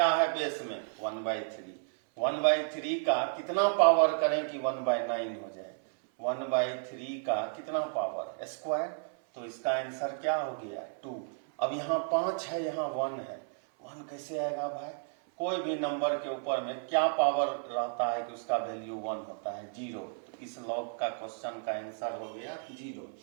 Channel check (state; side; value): silent; left; 56 dB below the other